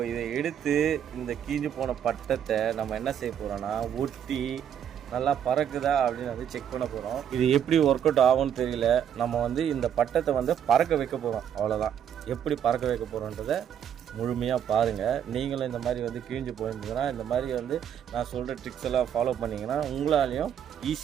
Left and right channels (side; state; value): left; quieter; 9.1 dB